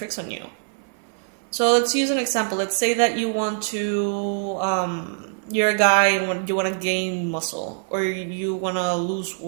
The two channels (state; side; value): silent; left; 57 dB below the other